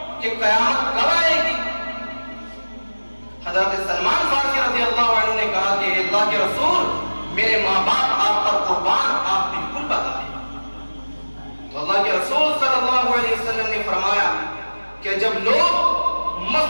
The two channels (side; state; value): both; inverted; correlation -1.00